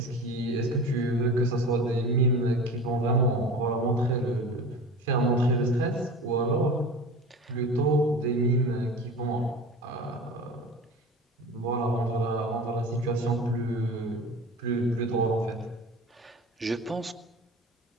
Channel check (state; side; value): normal; both; correlation 0.35